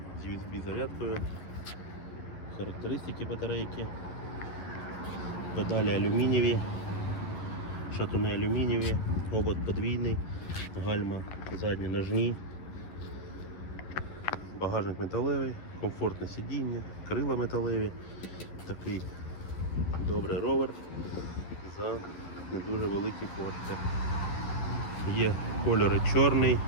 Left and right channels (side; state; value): right; late; 11 ms